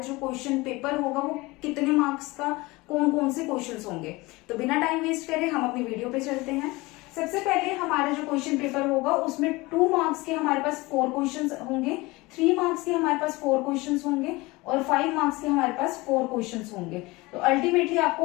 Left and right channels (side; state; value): right; quieter; 22.4 dB